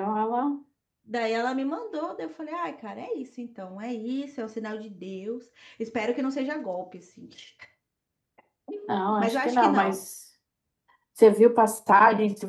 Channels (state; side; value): identical; both; correlation 1.00